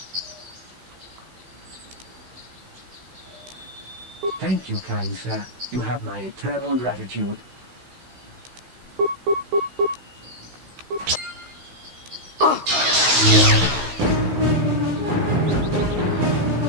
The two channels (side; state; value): left; late; 16 ms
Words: Thank you, kind sir. You have my eternal gratitude. I'm